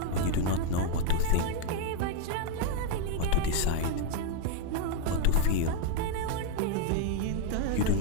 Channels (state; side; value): different; both; correlation 0.00